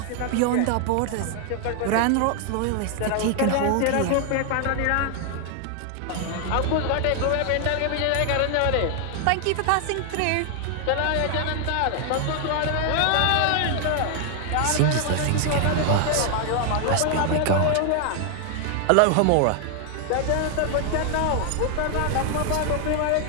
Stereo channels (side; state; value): both; different; correlation 0.00